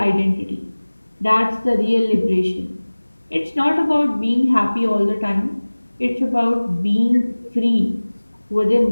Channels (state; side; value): inverted; both; correlation -1.00